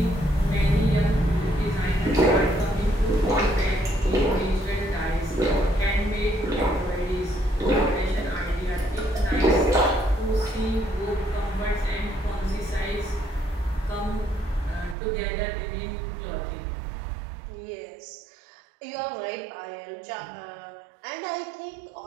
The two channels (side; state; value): left; drops out; at 15.0 s